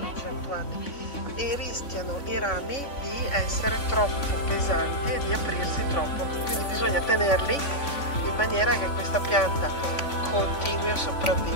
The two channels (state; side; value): late; right; 3.5 ms